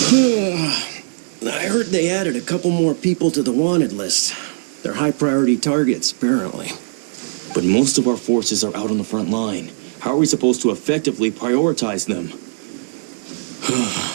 I heard they added a couple more people to the wanted list. They're high-priority targets, apparently. But most of our forces are out on the front line. How are we supposed to effectively prioritize them?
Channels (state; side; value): silent; left; digital silence